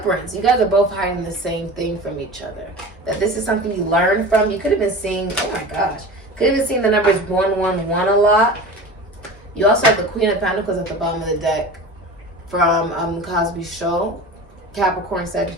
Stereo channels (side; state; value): both; normal; correlation 0.35